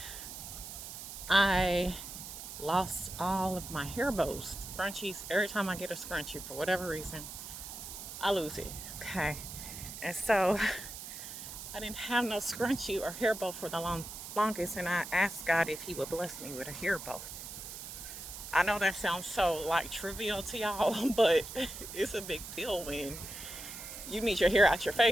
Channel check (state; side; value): noise; right; hiss, 10 dB below the sound